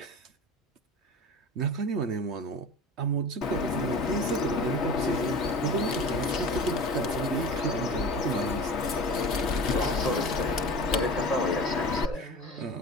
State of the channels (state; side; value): normal; both; correlation 0.35